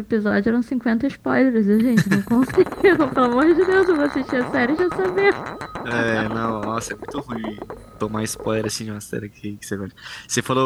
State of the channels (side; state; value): both; identical; correlation 1.00